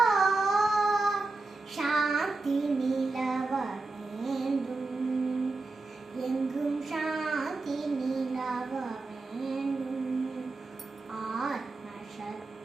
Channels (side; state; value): left; quieter; 3.5 dB